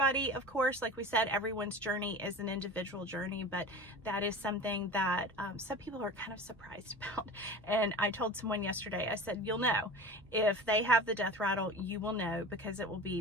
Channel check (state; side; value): normal; both; correlation 0.34